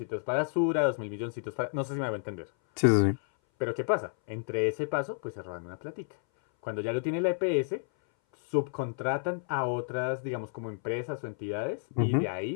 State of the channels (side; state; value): right; silent; 57 dB below the other